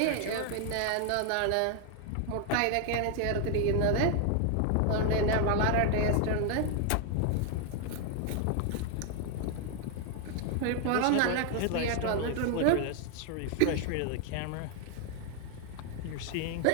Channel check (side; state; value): both; different; correlation 0.00